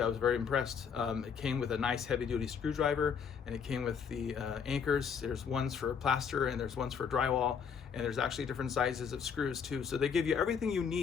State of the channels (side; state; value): right; quieter; 6.7 dB